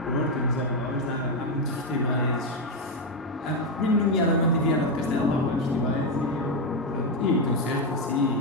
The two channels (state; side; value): normal; both; correlation 0.06